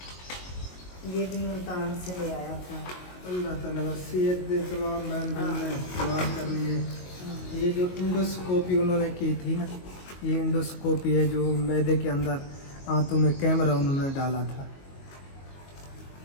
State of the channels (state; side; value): late; right; 22 ms